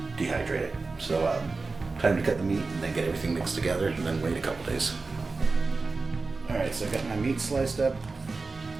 dehydrate it. So time to cut the meat and then get everything mixed together and then wait a couple days. Alright, so I got my meat sliced up.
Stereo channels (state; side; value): quieter; left; 3.9 dB